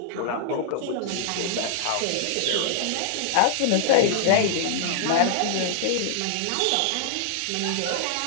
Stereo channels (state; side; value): different; both; correlation -0.01